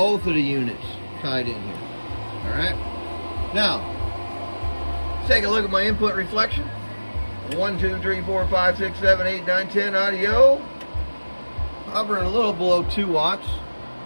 of the units tied in here. All right. Now, let's take a look at my input reflection. 1, 2, 3, 4, 5, 6, 7, 8, 9, 10 audio. Hovering a little below 2 watts.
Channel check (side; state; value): both; inverted; correlation -1.00